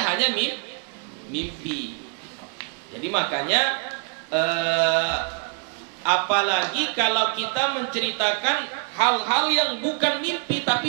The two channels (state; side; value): quieter; left; 36.6 dB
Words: mimpi. Jadi makanya apalagi kalau kita menceritakan hal-hal yang bukan mimpi